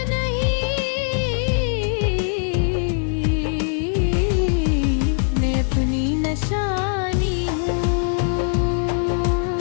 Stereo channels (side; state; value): right; silent; digital silence